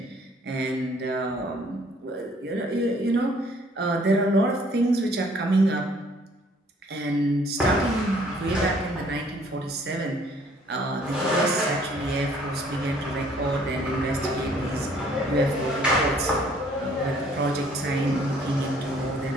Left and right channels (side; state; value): both; normal; correlation 0.60